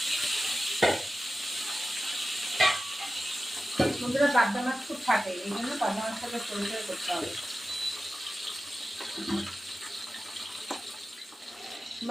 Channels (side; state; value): both; normal; correlation 0.94